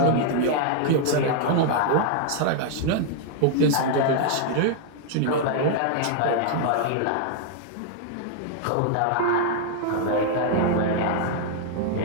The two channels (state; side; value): different; both; correlation -0.01